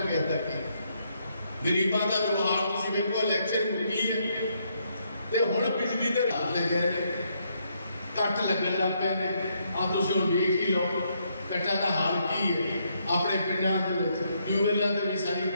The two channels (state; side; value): inverted; both; correlation -0.75